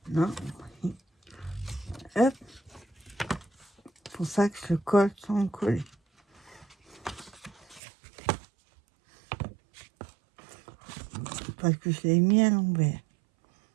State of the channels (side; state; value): left; drops out; at 7.8 s